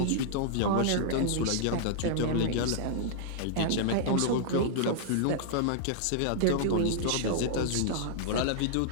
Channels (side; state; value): both; different; correlation -0.01